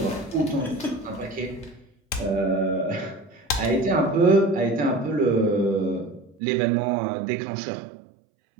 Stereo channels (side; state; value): left; drops out; at 6.4 s